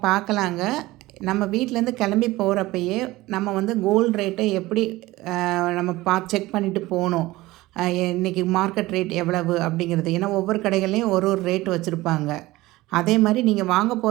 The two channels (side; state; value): left; quieter; 18.7 dB